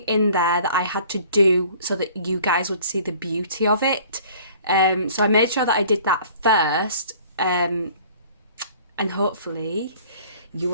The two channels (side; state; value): both; inverted; correlation -0.51